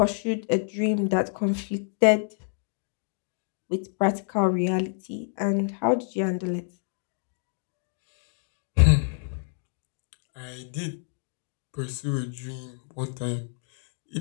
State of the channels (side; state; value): right; silent; digital silence